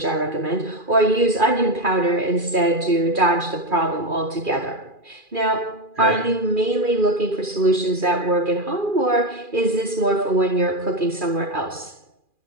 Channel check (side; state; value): left; late; 2.4 ms